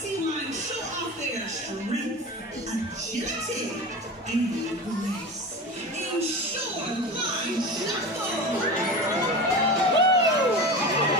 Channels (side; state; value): both; normal; correlation 0.29